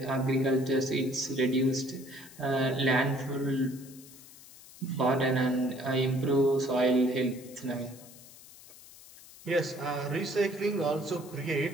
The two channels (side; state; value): left; noise; hiss, 20 dB below the sound